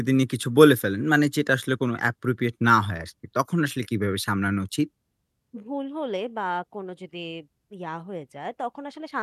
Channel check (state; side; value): identical; both; correlation 1.00